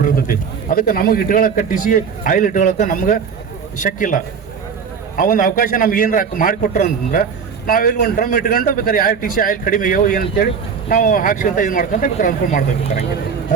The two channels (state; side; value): quieter; left; 6.3 dB